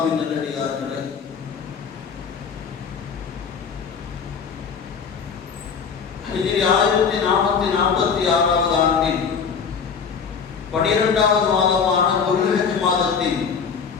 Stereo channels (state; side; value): quieter; right; 6.2 dB